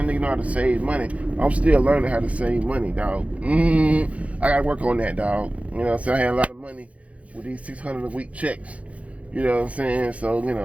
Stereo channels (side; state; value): left; late; 0.065 ms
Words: nigga know how to save money. I'm still learning how to save money, dog. I gotta work on that, dog. You know what I'm saying? I had a lot of money with these $600 a week checks. You know what I'm saying? So, you